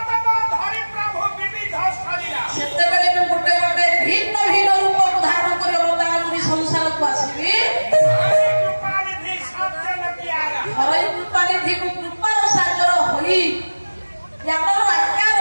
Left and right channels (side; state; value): both; inverted; correlation -1.00